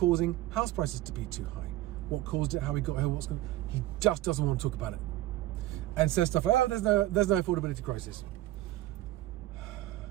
house prices to be too high. What caused it, how we got here, what's going on. He just doesn't want to talk about it. And says stuff like, oh, there's no affordability crisis.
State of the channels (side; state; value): left; quieter; 15.7 dB